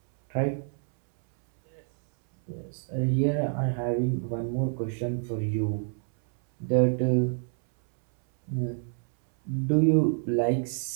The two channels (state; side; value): silent; left; 60 dB below the other